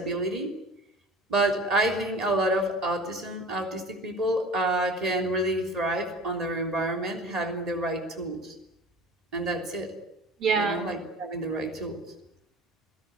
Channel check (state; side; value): normal; both; correlation 0.40